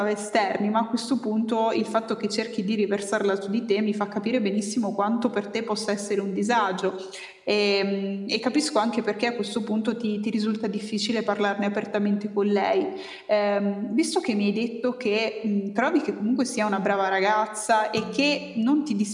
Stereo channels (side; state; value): both; identical; correlation 1.00